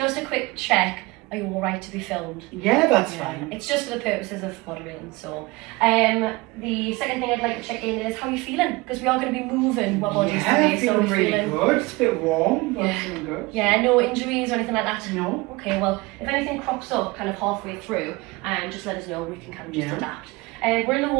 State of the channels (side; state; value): left; quieter; 23.2 dB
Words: a quick check, are you alright to be filmed? Yeah, that's fine. It's just for the purposes of moderating. So the second thing I'd like to check in is how are you feeling? Because we are going to be moving our bodies today. So feeling really good. It's a bit warm, but feeling good. Yeah, no injuries or anything like that? No. Okay, well, if anything crops up kind of halfway through, just let us know, we can kind of just adapt. We're in a